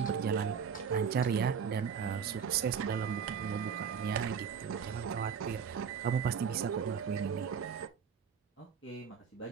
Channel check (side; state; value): left; quieter; 6.8 dB